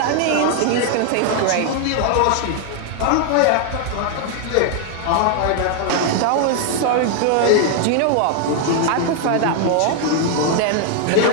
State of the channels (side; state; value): both; different; correlation 0.00